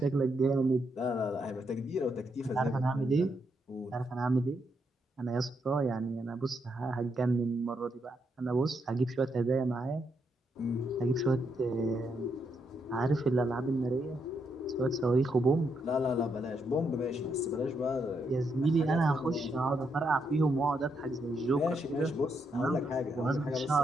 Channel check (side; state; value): both; normal; correlation 0.79